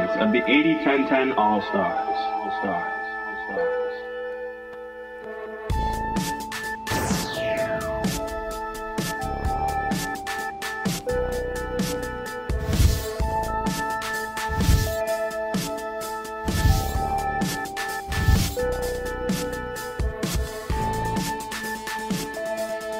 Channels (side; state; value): both; identical; correlation 1.00